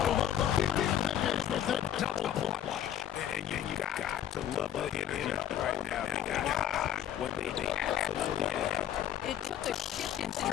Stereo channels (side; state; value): right; quieter; 10.7 dB